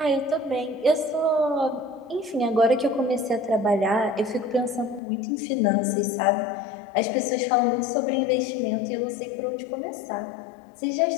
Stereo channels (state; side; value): drops out; right; at 5.0 s